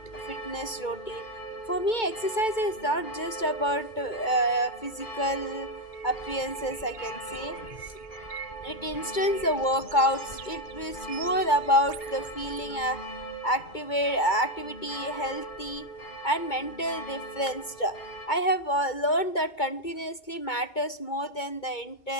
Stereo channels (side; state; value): right; late; 2.2 ms